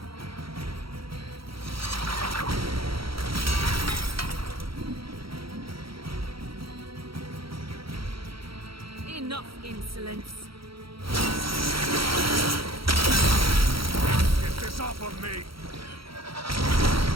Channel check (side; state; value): left; late; 0.75 ms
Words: Enough insolence. Get this off of me!